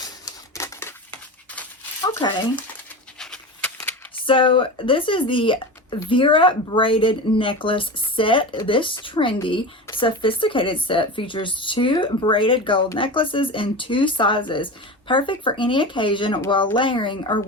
Okay. So this is the Vera braided necklace set. This trendy, sophisticated set features 2 braided gold necklaces in 2 sizes. Perfect for any occasion while layering or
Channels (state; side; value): normal; both; correlation 0.27